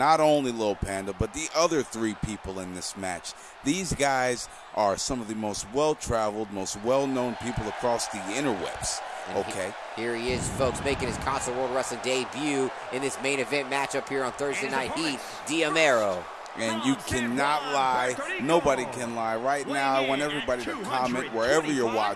only Lil Panda, but the other 3 people in this match. These guys are some of the most well-traveled, most well-known people across the interwebs. Okay. Here he is, folks, making his Console World Wrestling debut in this main event matchup here on Thursday Night Heat, D'Amero. And you cannot lie. Nobody can lie. Right now, I want everybody to comment wherever you're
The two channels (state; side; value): identical; both; correlation 1.00